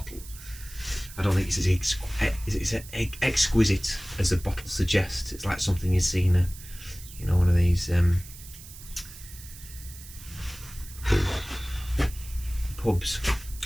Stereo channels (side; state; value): right; noise; hiss, 16 dB below the sound